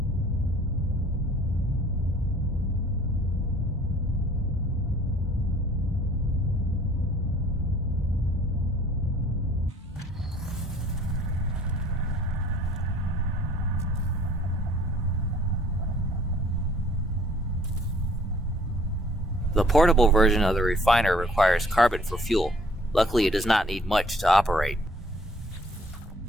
The portable version of the refiner requires carbon for fuel. Luckily, it does not need much to operate.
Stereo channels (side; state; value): both; normal; correlation 0.57